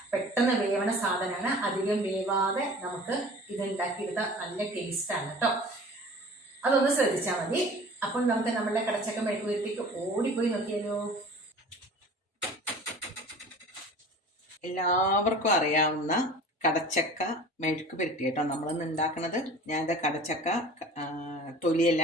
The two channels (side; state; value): both; normal; correlation 0.42